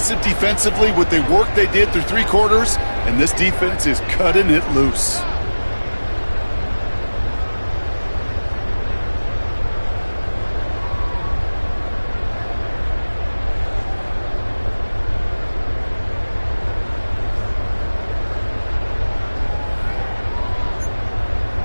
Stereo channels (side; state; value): both; inverted; correlation -1.00